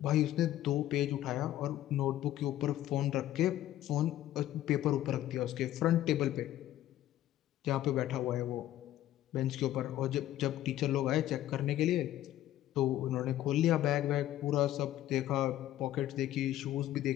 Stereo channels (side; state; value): right; quieter; 13.4 dB